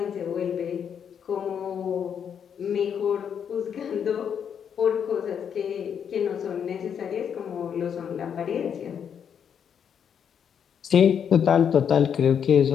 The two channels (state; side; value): quieter; right; 7.9 dB